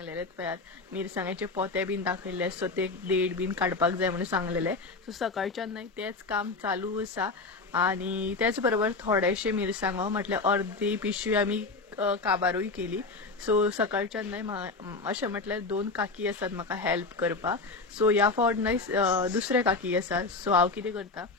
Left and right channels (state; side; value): quieter; right; 3.8 dB